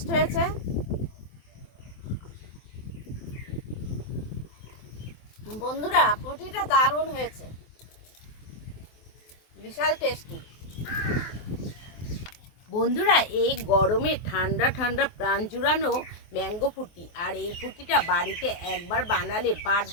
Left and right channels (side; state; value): right; late; 23 ms